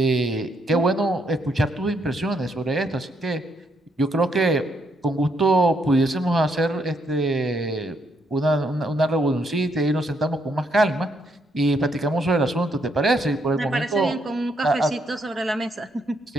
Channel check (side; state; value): both; normal; correlation 0.75